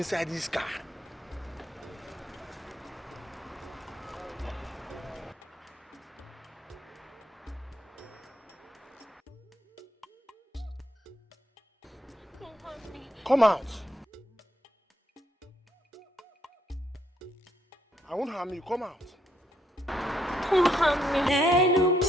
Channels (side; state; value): both; normal; correlation 0.73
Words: this car. Come out. I won't harm you. Come out. Don't harm me.